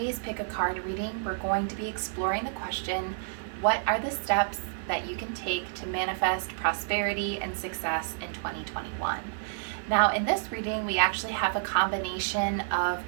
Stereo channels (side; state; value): left; silent; digital silence